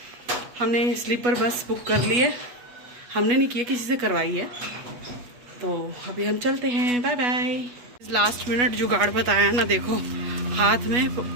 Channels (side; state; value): left; late; 8.2 ms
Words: स्लीपर बस बुक कर ली है। हमने नहीं किया, किसी से करवाई है। तो अभी हम चलते हैं, बाय बाय। लास्ट मिनट जुगाड़ बताया ना, देखो हाथ में